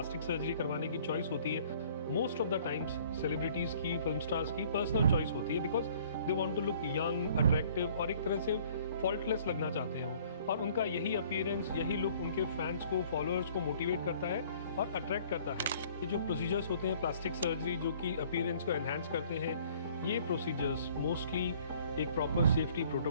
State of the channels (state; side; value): inverted; both; correlation -0.56